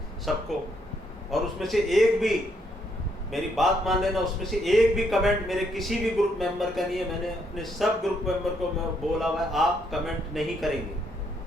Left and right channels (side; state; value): both; normal; correlation 0.73